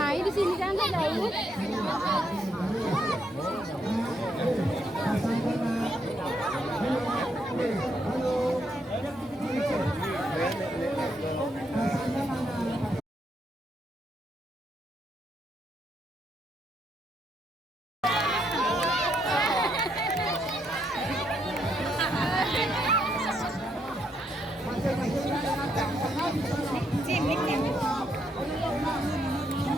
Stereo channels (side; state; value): both; normal; correlation 0.76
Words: di sini kan ada jauh.